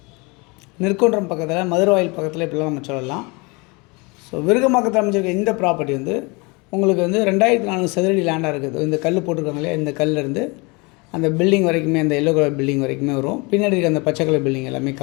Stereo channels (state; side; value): quieter; right; 27.9 dB